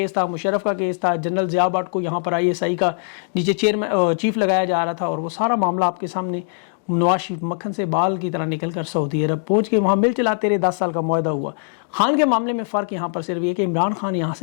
تھا، مشرف کا کیس تھا، جنرل ضیاء بٹ کو یہاں پر ISI کا نیچے چیف لگایا جا رہا تھا، اور وہ سارا معاملہ آپ کے سامنے. نواز شریف مکھن سے بال کی طرح نکل کر سعودی عرب پہنچ کے وہاں مل چلاتے رہے، 10 سال کا معاہدہ ہوا. خان کے معاملے میں فرق یہاں پر صرف یہ کہ عمران خان یہاں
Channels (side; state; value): right; silent; digital silence